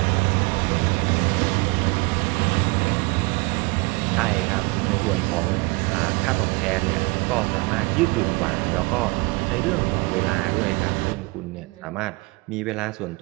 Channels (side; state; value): left; quieter; 25.9 dB